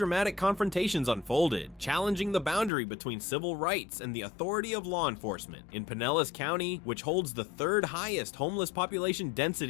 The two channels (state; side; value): drops out; right; at 2.7 s